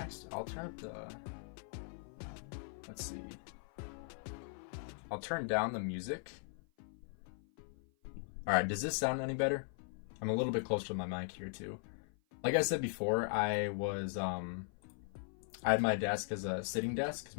I'll turn up the, let's see. I'll turn down the music. All right, does this sound any better? I'm a little bit closer to my mic here too. Like I said before, I had my desk as a sitting desk because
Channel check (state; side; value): silent; right; 52 dB below the other